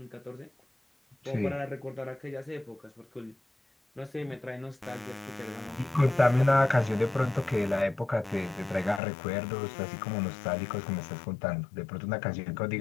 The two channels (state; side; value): drops out; right; at 9.0 s